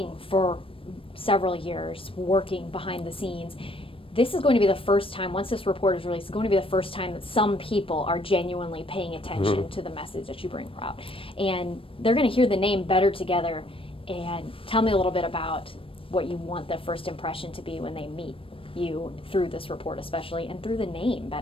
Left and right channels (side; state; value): right; late; 0.26 ms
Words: for several years, working behind the scenes, this is going to be the first time, once this report is released, it's going to be the first time that some people are genuinely paying attention to the message that you bring out. And they're going to hear the name Better Together. And tell me a little bit about what you want the first impression to be when they meet you through this report especially, and through the name